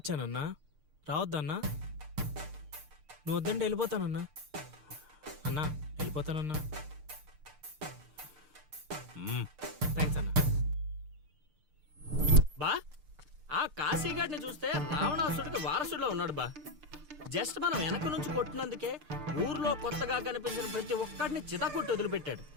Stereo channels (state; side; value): late; left; 6.6 ms